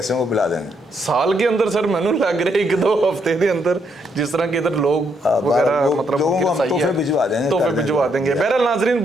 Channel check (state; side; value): normal; both; correlation 0.75